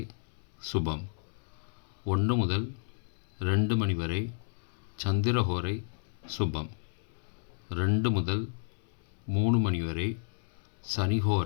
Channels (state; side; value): silent; right; 57 dB below the other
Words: சுபம். 1 முதல் 2 மணி வரை சந்திரஹோரை சுபம். 2 முதல் 3 மணி வரை